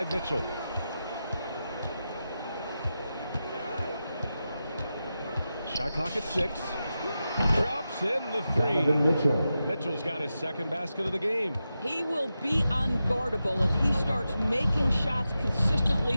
Mitchell. Shot clock at 6. Drops in the three. Mitchell's got his second basket of the game. He will be unguardable if he starts making shots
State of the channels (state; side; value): inverted; both; correlation -0.91